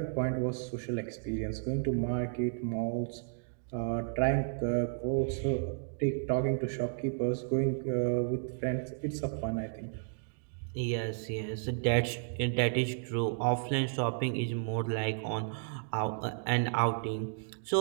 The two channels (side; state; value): left; silent; digital silence